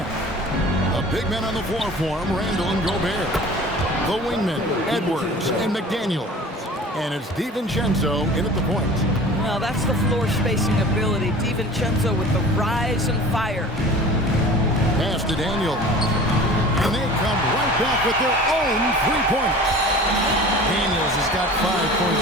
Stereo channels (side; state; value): both; normal; correlation 0.41